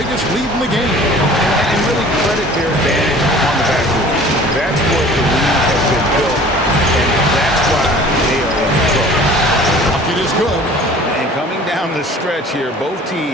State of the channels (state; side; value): normal; both; correlation 0.47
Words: lead in the game. And really credit their advantage on the backcourt. That's what the league has been built, and that's why they are in control. Bucket is good. And coming down the stretch here, both